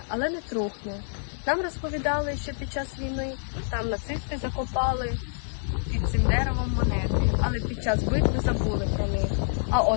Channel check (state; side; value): silent; right; digital silence